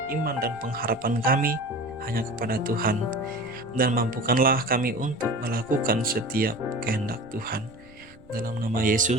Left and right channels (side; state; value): right; noise; rumble, 25 dB below the sound